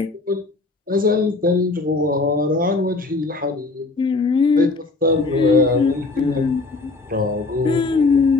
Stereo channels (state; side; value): quieter; right; 3.5 dB